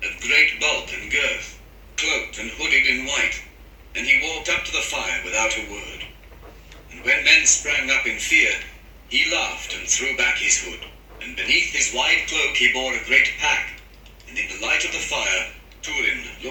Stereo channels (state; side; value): identical; both; correlation 1.00